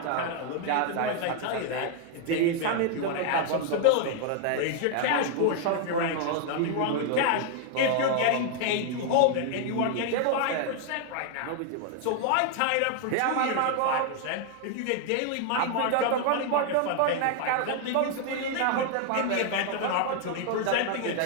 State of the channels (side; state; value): both; different; correlation 0.00